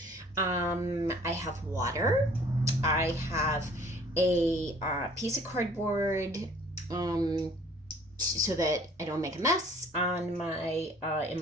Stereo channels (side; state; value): both; normal; correlation 0.54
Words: I have water, I have a piece of cardboard, so that I don't make a mess on my in